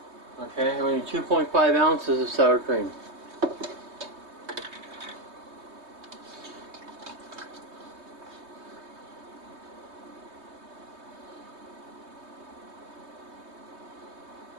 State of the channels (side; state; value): left; late; 3.2 ms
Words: Okay, and we need 2.5 ounces of sour cream.